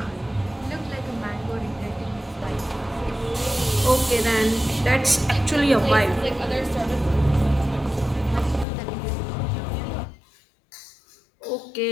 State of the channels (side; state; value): right; drops out; at 8.7 s